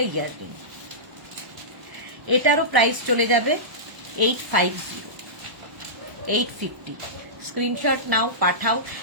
ইয়াররিং, এটারও প্রাইস চলে যাবে 850, 850। Screenshot now, Pathao,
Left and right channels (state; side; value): late; left; 1.0 ms